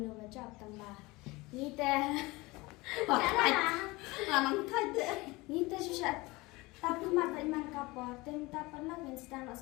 baca tambah. Ni teh. Lanang thai teh. Ni teh susah. Tapi mata iman kapor, tem tak pernah instan nak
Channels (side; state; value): right; quieter; 22.5 dB